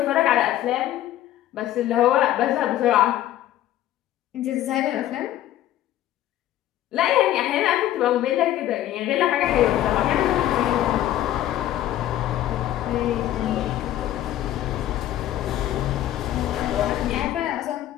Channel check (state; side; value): quieter; right; 13.1 dB